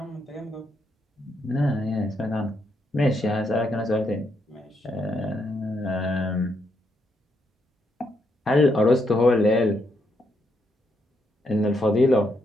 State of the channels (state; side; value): normal; both; correlation 0.78